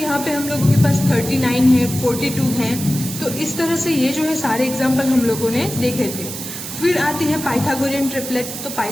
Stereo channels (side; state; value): right; noise; hiss, 8 dB below the sound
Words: पे हम लोगों के पास 39 है, 42 है। तो इस तरह से ये जो है सारे एग्जाम्पल हम लोगों ने देखे थे। फिर आती है पाइथागोरियन ट्रिपलेट। तो